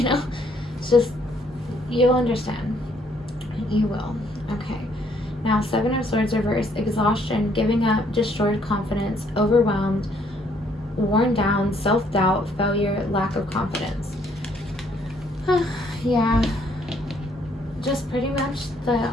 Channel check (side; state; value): both; normal; correlation 0.67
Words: know, it's just, you'll understand. You will. Okay. Now, 7 of Swords reversed. Exhaustion, giving up, destroyed confidence, overwhelmed, worn down, self-doubt, failure, lack of confidence. Yeah. Just pretty much the